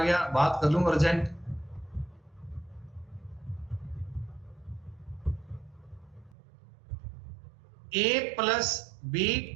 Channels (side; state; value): left; drops out; at 6.4 s